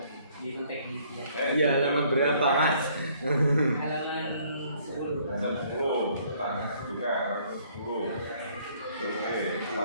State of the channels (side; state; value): both; inverted; correlation -0.62